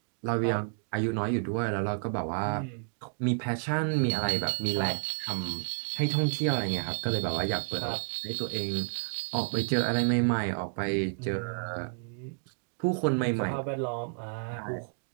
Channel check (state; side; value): silent; left; digital silence